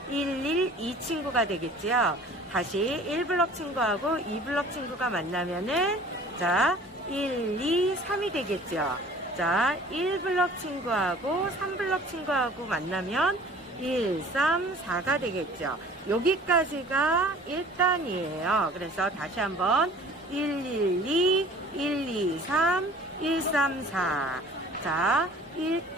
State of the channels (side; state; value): both; normal; correlation 0.48